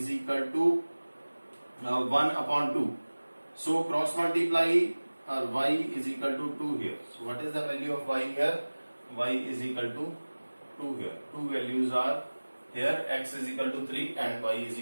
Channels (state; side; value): inverted; both; correlation -1.00